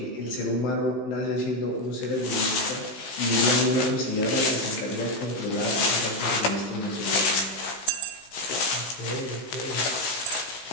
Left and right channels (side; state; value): right; late; 16 ms